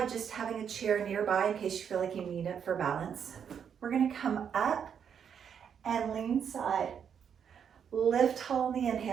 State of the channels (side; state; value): left; quieter; 7.8 dB